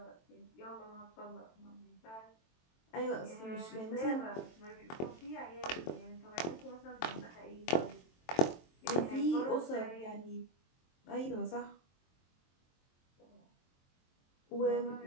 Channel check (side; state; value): right; late; 23 ms